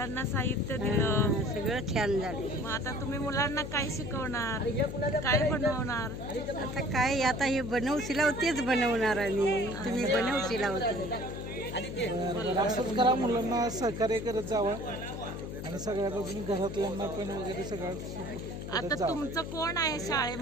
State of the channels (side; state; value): left; noise; hum, 7 dB below the sound